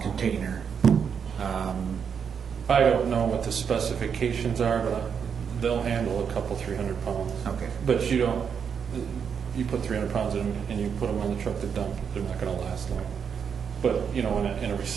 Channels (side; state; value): left; quieter; 7.0 dB